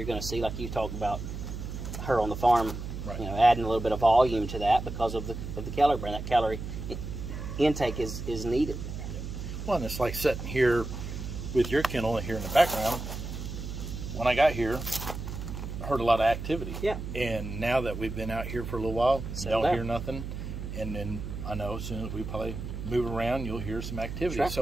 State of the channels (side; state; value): right; noise; hum, 7 dB below the sound